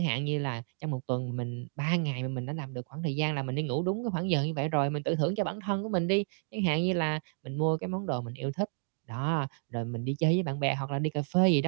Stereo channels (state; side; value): silent; left; digital silence